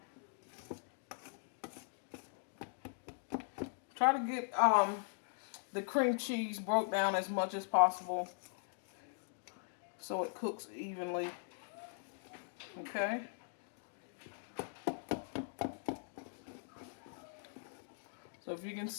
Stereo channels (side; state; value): right; silent; digital silence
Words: Try to get the cream cheese broke down as much as possible so it cooks evenly. Okay? So if you can